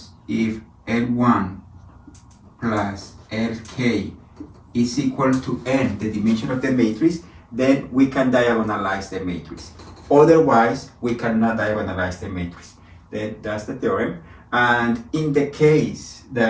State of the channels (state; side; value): identical; both; correlation 1.00